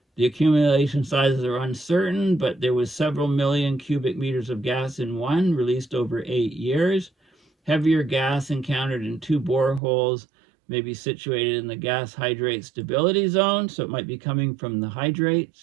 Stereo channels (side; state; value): left; drops out; at 9.8 s